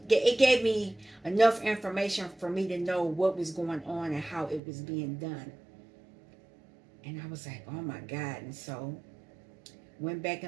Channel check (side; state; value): left; drops out; at 4.6 s